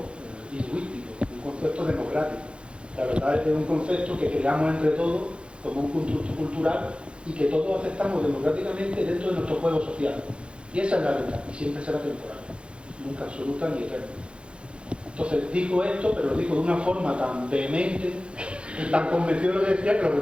lingüístico, un concepto democrático. La verdad es un concepto que creamos entre todos como un constructo cultural y que todos aceptamos democráticamente dentro de nuestro juego social. Y esa es la verdad, y siempre será temporal, nunca absoluta ni eterna. Entonces dijo esto, pero lo dijo de una forma tan vehemente, tan convencido de lo que decía, que los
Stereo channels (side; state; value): left; late; 0.057 ms